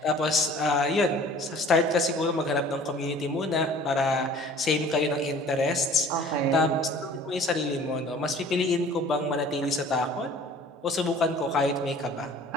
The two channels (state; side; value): normal; both; correlation 0.49